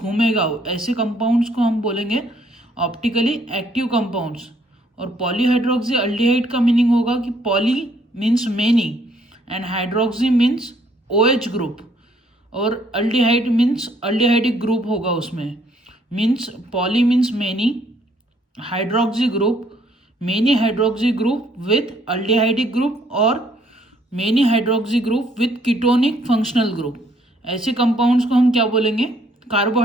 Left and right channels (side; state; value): both; normal; correlation 0.66